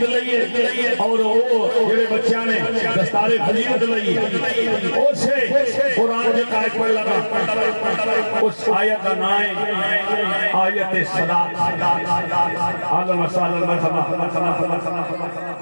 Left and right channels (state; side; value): inverted; both; correlation -1.00